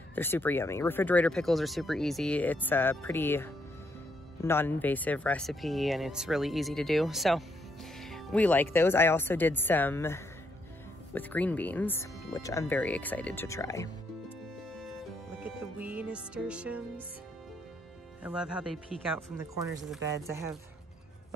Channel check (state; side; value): normal; both; correlation 0.74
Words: super yummy. Refrigerator pickles are super easy. It's a pretty non-invasive recipe and it's really easy to do. So we like those. I also did some with green beans, which I'm very excited to try. Look at the wee nasturtiums. I love how they peek out from the corners of the beds.